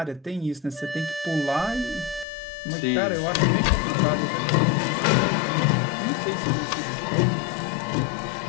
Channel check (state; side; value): drops out; right; at 2.2 s